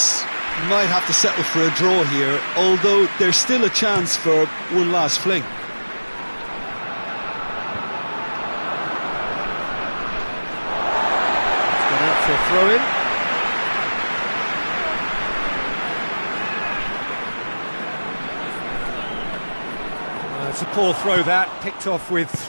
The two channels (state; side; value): inverted; both; correlation -1.00